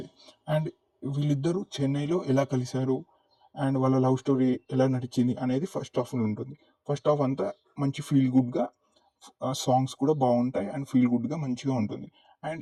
అండ్ వీళ్ళిద్దరూ చెన్నైలో ఎలా కలిశారు అండ్ వాళ్ళ లవ్ స్టోరీ ఎలా నడిచింది అనేది ఫస్ట్ హాఫ్ ఉంటుంది. ఫస్ట్ హాఫ్ అంతా మంచి ఫీల్ గుడ్గా, సాంగ్స్ కూడా బాగుంటాయి అండ్ ఫీల్ గుడ్గా మంచిగా ఉంటుంది.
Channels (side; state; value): both; identical; correlation 1.00